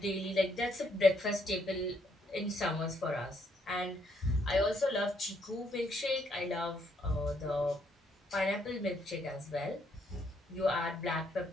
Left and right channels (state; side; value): normal; both; correlation 0.72